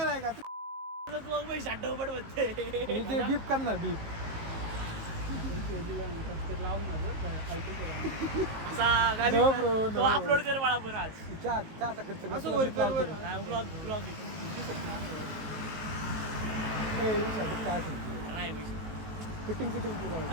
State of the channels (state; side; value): late; left; 18 ms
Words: नाही का मग मी शाट पड म्हणते हे जे बीप करणार बीप असा घाली No, ना. bro, तो no. अपलोड कर मला पण आज चहाचा खर्च कर, असं तुला वर बीप कर, लावतो. वर. नाही ब्लॉग ए, विशाल, बघ काय असेल. नाही पैसे फिटिंग तुला